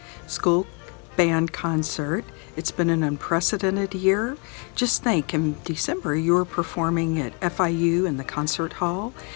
school band concert. It's been an unprecedented year. Just think, in December you were performing at FIU in the concert hall.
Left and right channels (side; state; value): right; quieter; 35.5 dB